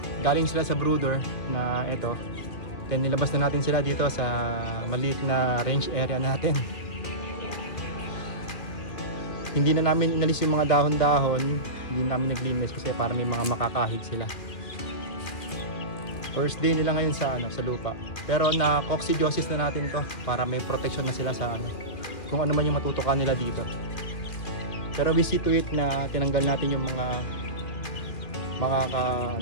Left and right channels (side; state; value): right; late; 2.4 ms